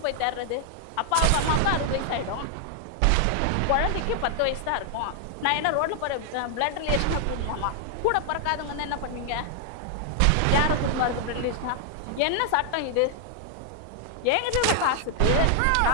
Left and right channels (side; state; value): both; different; correlation 0.00